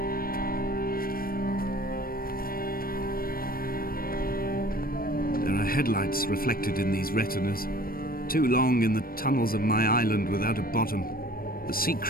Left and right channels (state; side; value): late; right; 0.43 ms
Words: Headlights reflected in these retinas. Too long in the tunnels of my island without a bottom. The sea